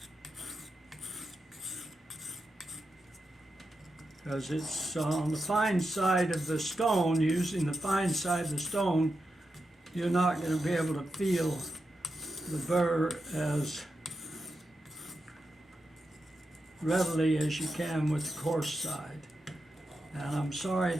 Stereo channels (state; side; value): normal; both; correlation 0.88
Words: because it's on the fine side of the stone. Using the fine side of the stone, you're not going to be able to feel the burr as readily as you can with the coarse side. And I'm sorry